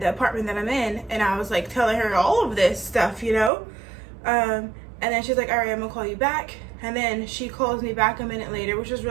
the apartment that I'm in? And I was like telling her all of this stuff, and then she's like, all right, I'm gonna call you back. And then she calls me back a minute later, which was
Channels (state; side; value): drops out; left; at 3.5 s